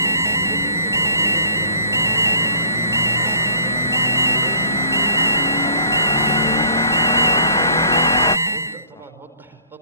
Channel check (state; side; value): inverted; both; correlation -0.54